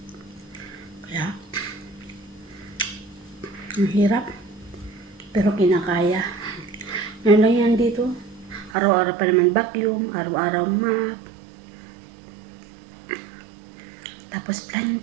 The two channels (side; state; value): left; drops out; at 8.8 s